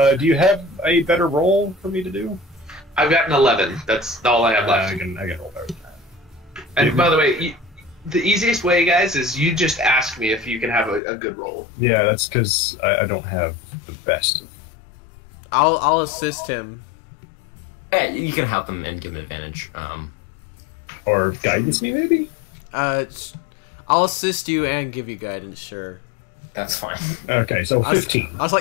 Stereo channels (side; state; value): right; drops out; at 11.0 s